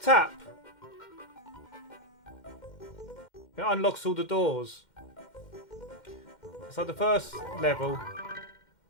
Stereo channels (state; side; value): late; right; 2.1 ms